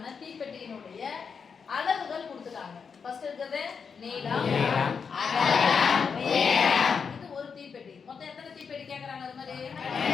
தீப்பெட்டியினுடைய அளவுகள் கொடுத்துட்டாங்க. ஃபர்ஸ்ட் இருக்குது நீளம், அகலம், உயரம். இது ஒரு தீப்பெட்டி. மொத்தம் எத்தனை தீப்பெட்டி கேக்குறாங்க? அது மாதிரி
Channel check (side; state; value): right; quieter; 6.0 dB